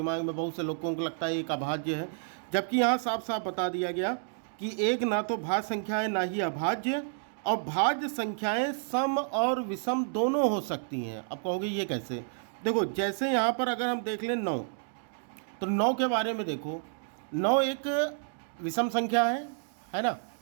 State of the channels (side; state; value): left; silent; digital silence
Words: में बहुत से लोगों को लगता है एक अभाज्य है, जबकि यहाँ साफ साफ बता दिया गया कि 1 ना तो भाज्य संख्या है ना ही अभाज्य, और भाज्य संख्याएं सम और विषम दोनों हो सकती हैं। अब कहोगे ये कैसे? देखो जैसे यहाँ पर अगर हम देख लें 9, तो 9 के बारे में देखो। 9 एक विषम संख्या है ना।